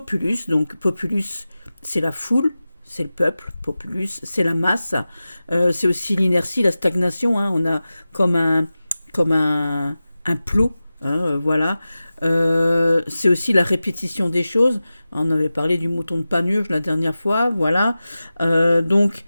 Donc populus c'est la foule, c'est le peuple. Populus c'est la masse. C'est aussi l'inertie, la stagnation. Hein. On a comme un plot. Hein, voilà. C'est aussi la répétition des choses. On avait parlé du mouton de Panurge la dernière fois. Voilà. Donc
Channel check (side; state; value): both; inverted; correlation -0.95